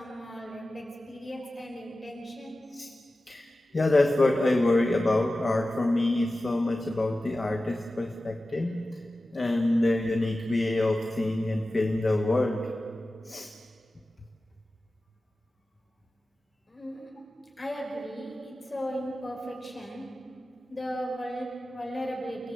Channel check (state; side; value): normal; both; correlation 0.95